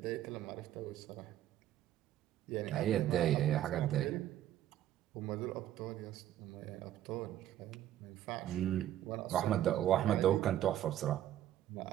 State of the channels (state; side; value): quieter; left; 12.2 dB